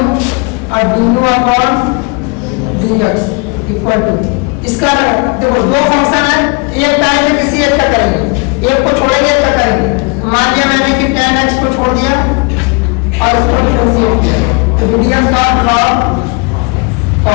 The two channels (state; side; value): quieter; right; 31.5 dB